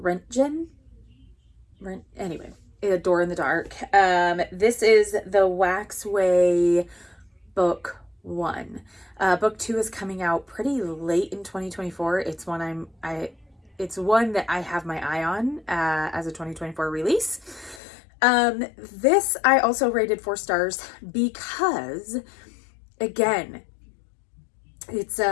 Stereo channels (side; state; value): right; drops out; at 17.8 s